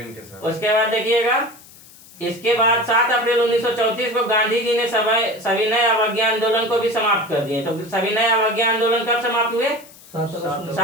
उसके बाद देखिएगा इसके बाद 7 अप्रैल 1934 को गांधी जी ने सविनय अवज्ञा आंदोलन को भी समाप्त कर दिए। तो सविनय अवज्ञा आंदोलन कब समाप्त हुए?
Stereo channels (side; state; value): left; noise; hiss, 22 dB below the sound